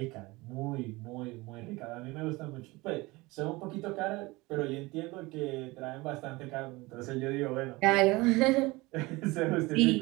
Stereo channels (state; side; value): quieter; left; 22.3 dB